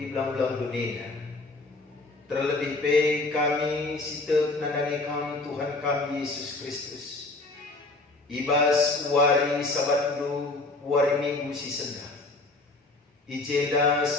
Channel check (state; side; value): quieter; right; 3.2 dB